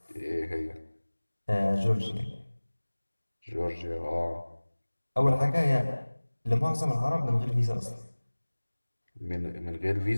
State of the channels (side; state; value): both; inverted; correlation -1.00